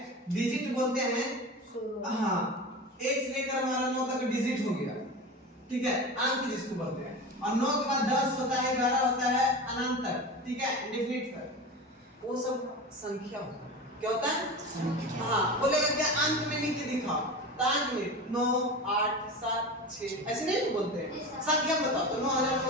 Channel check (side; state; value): both; normal; correlation 0.29